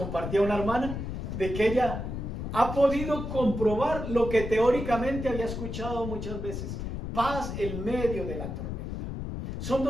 una hermana de que ella ha podido comprobar lo que teóricamente había escuchado muchas veces. Paz en medio de la tormenta. Son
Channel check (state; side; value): noise; left; rumble, 5 dB below the sound